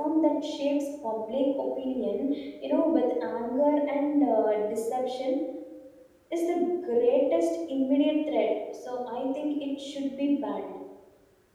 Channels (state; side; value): identical; both; correlation 1.00